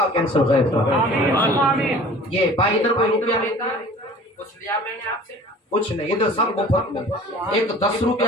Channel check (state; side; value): normal; both; correlation 0.45